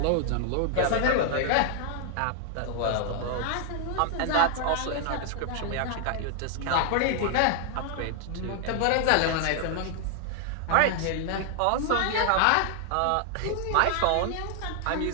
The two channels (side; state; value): both; different; correlation 0.00